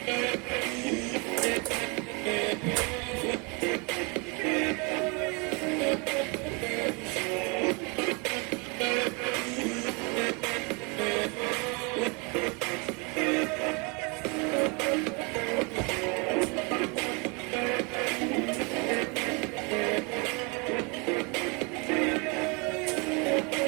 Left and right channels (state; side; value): quieter; left; 31.2 dB